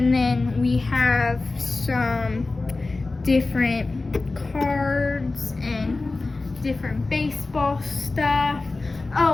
then we have some different cards and different baseball stuff.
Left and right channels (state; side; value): quieter; right; 3.4 dB